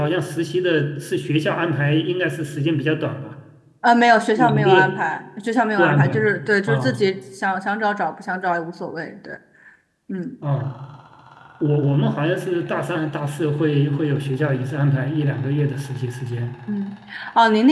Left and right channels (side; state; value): both; identical; correlation 1.00